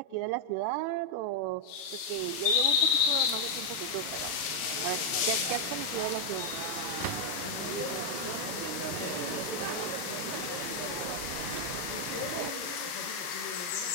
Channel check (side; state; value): right; late; 39 ms